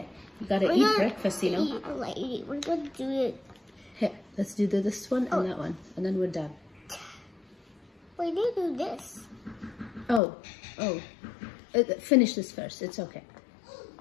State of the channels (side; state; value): right; drops out; at 10.2 s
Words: You gotta eat breakfast, you know? We're gonna do it. Here, let's do this one and that one, and then we're done. We need to do this. Oh. Finish this first. It's okay.